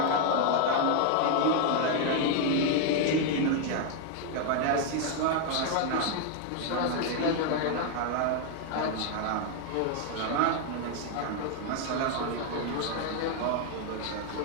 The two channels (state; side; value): different; both; correlation 0.00